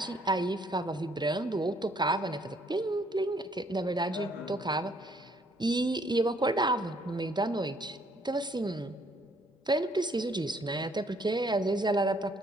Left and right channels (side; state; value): both; normal; correlation 0.65